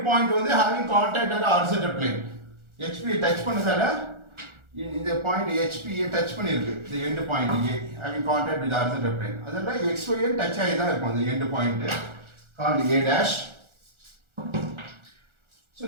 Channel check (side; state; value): left; late; 1.4 ms